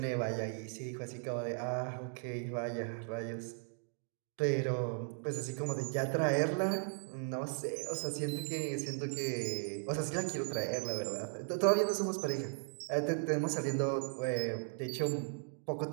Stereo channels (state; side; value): silent; left; 53 dB below the other